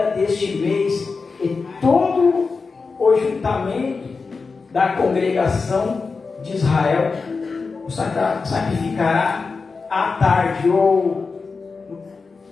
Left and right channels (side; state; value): right; quieter; 4.5 dB